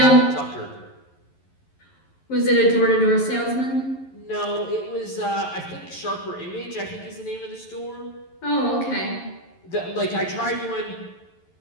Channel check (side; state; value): right; late; 11 ms